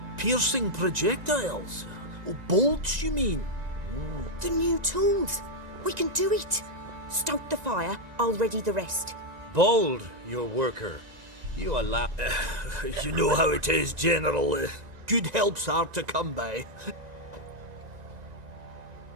Piercing projectiles? Oh, bolts, you mean? The new tools. We can do it. Stoke the fire, I'll ready the rest. Bold, your worker. You allow... You know how it is, General. Good help's hard to come by.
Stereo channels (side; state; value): left; late; 1.9 ms